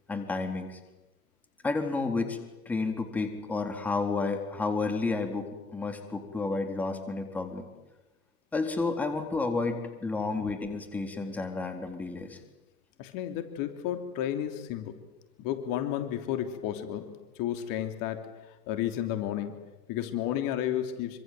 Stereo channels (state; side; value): quieter; right; 5.1 dB